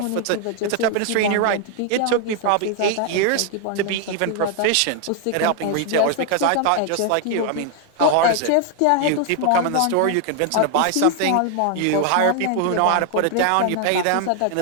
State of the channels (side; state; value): both; different; correlation 0.00